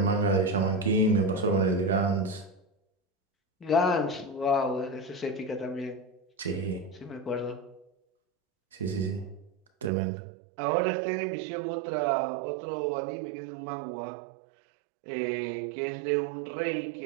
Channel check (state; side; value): drops out; left; at 9.9 s